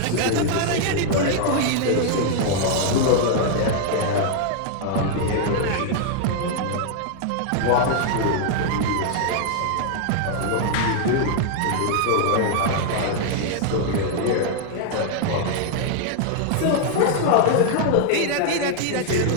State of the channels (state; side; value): different; both; correlation 0.00